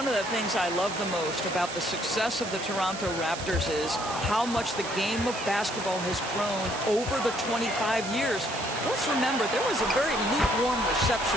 of the things I love the most about the success of the Toronto Raptors is how much the game of basketball has grown over the 25 years. Let's remember, there was a very lukewarm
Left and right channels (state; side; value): noise; right; hiss, 9 dB below the sound